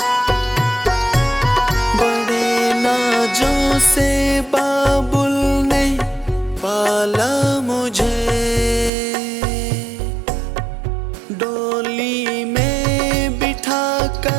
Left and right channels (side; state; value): left; drops out; at 8.9 s